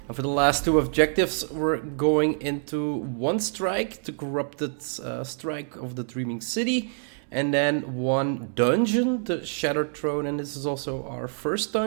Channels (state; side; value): silent; left; digital silence